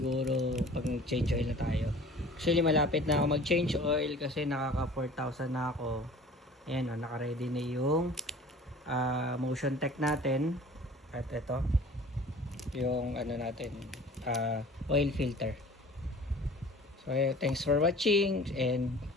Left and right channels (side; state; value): both; normal; correlation 0.45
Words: pag change oil na tayo. Actually malapit na ako mag change oil kasi nakaka 4,000 na ako. Ayan o, naka-ready na yung motion tech natin. At ito yung ano natin, oil filter. So thanks for watching and